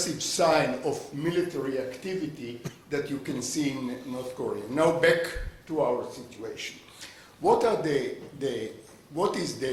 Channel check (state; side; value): identical; both; correlation 1.00